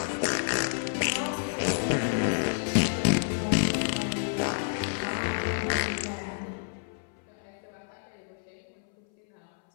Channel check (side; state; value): right; silent; 58 dB below the other